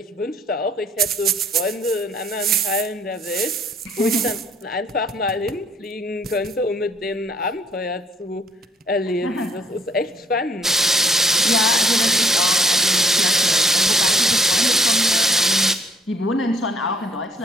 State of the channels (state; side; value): normal; both; correlation 0.58